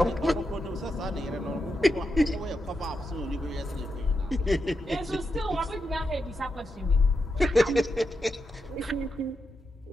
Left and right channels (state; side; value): normal; both; correlation 0.86